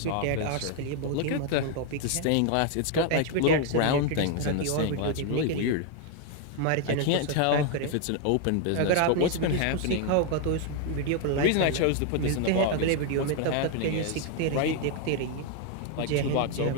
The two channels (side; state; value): both; different; correlation 0.00